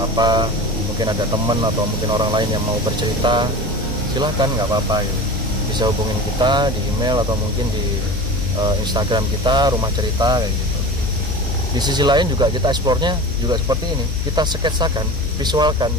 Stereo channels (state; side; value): normal; both; correlation 0.33